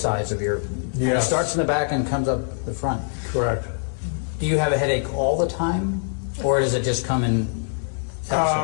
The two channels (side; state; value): right; silent; digital silence